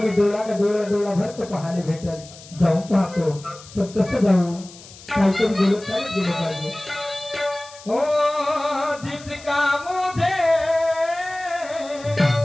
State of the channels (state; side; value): noise; left; hiss, 19 dB below the sound